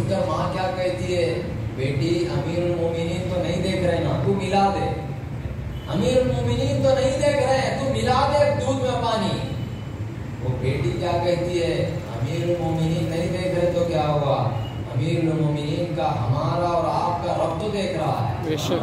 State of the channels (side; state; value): both; identical; correlation 1.00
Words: کر ماں کیا کہتی ہے؟ بیٹی امیر المومنین تو نہیں دیکھ رہے نا، تو ملا دے، امیر المومنین تو نہیں دیکھ رہے ہیں، تو ملا دے دودھ میں پانی۔ وہ بیٹی کیا کہتی ہے؟ امیر المومنین نہیں دیکھ رہے تو کیا ہوا؟ امیر المومنین کا ہمارا اور آپ کا رب تو دیکھ رہا ہے،